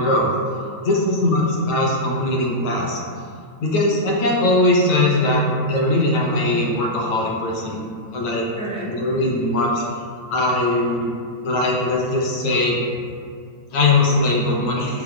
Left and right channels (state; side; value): late; right; 9.2 ms